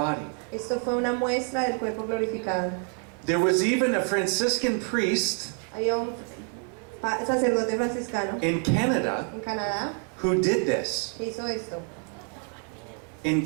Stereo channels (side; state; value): left; quieter; 39.8 dB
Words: Esto fue una muestra del cuerpo glorificado. There was even a Franciscan priest Había un sacerdote franciscano in Canada en Canadá who did this que hizo esto in